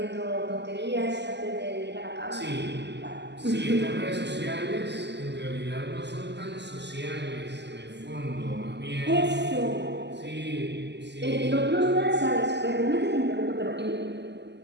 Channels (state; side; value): late; left; 0.50 ms